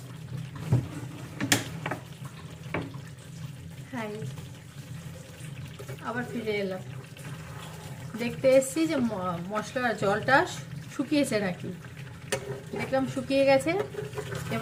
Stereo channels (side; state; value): both; identical; correlation 1.00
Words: হাই, আবার ফিরে এলাম। দেখতে এসছি যে মশলার জলটা শুকিয়েছে নাকি। দেখলাম শুকিয়ে গেছে।